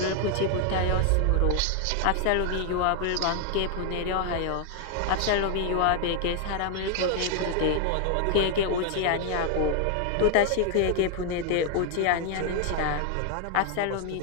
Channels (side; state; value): both; different; correlation 0.00